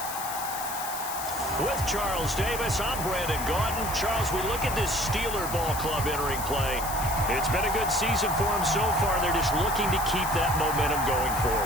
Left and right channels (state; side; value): noise; left; hiss, 8 dB below the sound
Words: With Charles Davis, I'm Brandon Gaudin. Charles, we look at this Steeler ball club entering play. It's been a good season for them so far. They're just looking to keep that momentum going